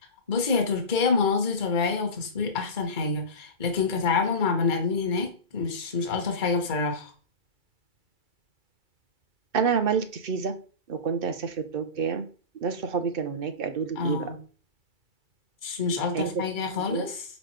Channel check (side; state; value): left; late; 2.3 ms